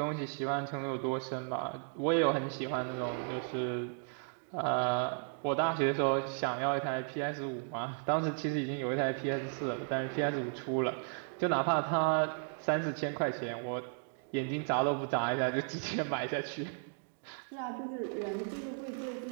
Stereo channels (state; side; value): silent; left; 55 dB below the other